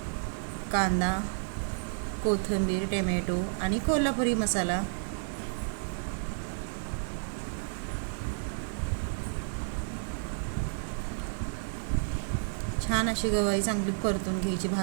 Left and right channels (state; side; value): silent; left; digital silence